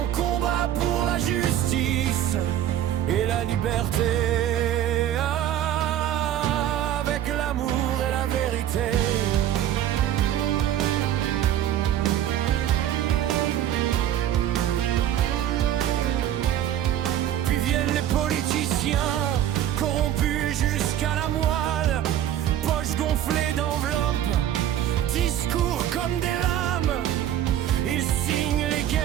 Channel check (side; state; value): left; quieter; 11.4 dB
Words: combat pour la justice et la liberté, avec l'amour et la vérité. Puis viennent les politiciens, corrompus jusqu'à la moelle, poches gonflées d'enveloppes, discours comme des lames, ils signent les guerres